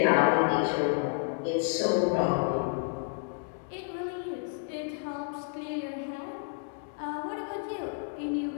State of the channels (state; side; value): silent; right; 58 dB below the other